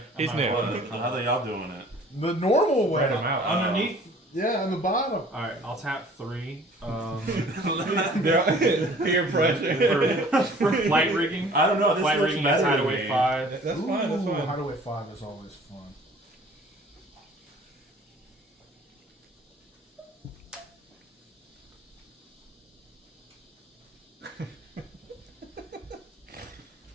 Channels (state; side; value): normal; both; correlation 0.51